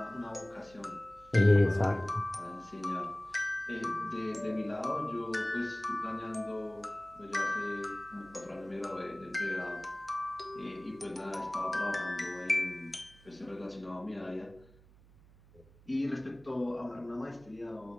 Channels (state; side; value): noise; right; hum, 24 dB below the sound